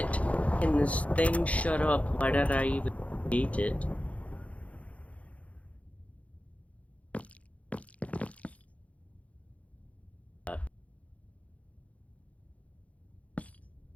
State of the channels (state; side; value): late; right; 0.066 ms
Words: Can this thing shut up? Why did I even eat it?